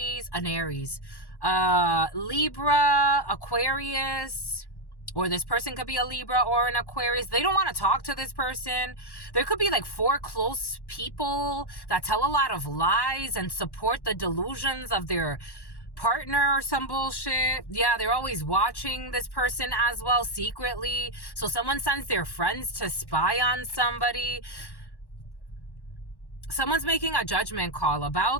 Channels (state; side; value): late; right; 1.1 ms